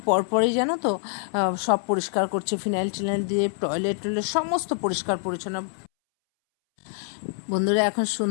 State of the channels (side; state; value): right; silent; 62 dB below the other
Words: পরপরই জানো তো সব পরিষ্কার করছে, ফিনাইল টিনাইল দিয়ে, টয়লেট টয়লেট সমস্ত পরিষ্কার পরিচ্ছন্ন। বন্ধুরা, এখন